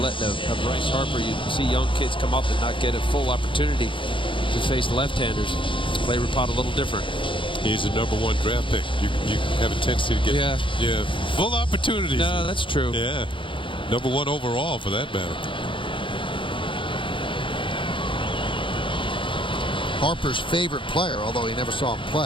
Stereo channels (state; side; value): late; right; 0.25 ms